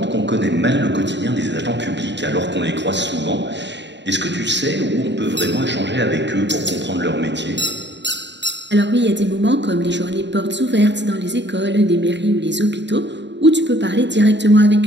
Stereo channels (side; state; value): left; late; 0.52 ms